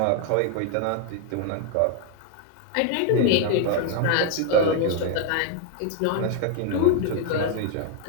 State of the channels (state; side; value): different; both; correlation 0.00